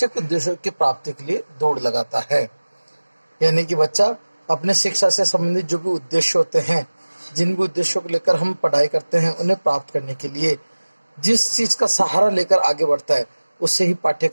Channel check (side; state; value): both; inverted; correlation -1.00